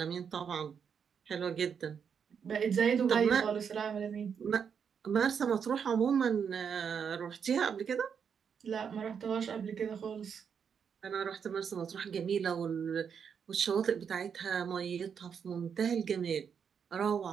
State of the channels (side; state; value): left; quieter; 7.0 dB